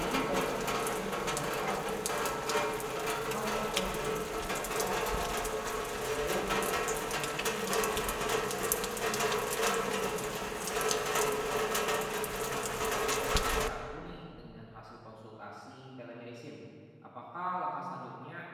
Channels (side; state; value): both; identical; correlation 1.00